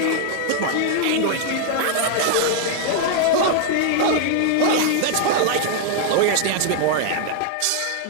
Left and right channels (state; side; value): different; both; correlation 0.00